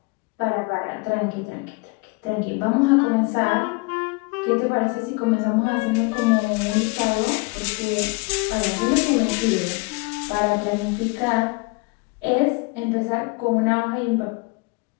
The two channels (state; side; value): quieter; right; 28.3 dB